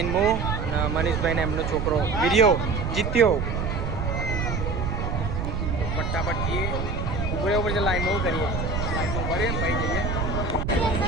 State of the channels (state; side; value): noise; right; rumble, 2 dB below the sound